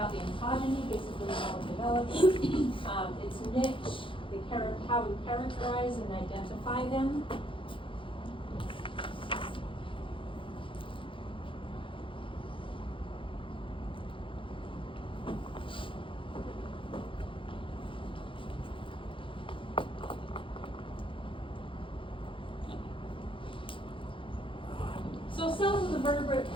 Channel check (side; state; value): right; late; 0.25 ms